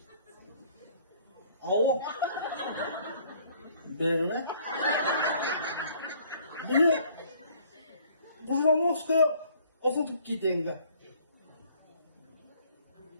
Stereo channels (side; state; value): both; inverted; correlation -0.59